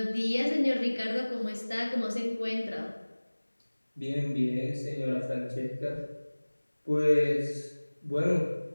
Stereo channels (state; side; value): inverted; both; correlation -1.00